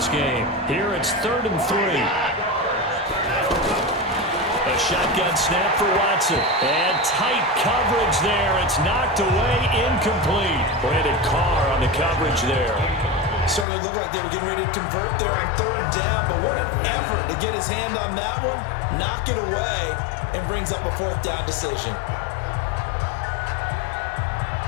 game. Here it's 3rd and 3. A shotgun snap for Watson. And tight coverage there. It's knocked away, incomplete. Brandon Carr on the coverage there. Started to look like they were getting ready to convert there on 3rd down, but what an effort to get his hand on that one, knock it away, and brings up a 4th down decision.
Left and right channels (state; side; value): drops out; right; at 13.7 s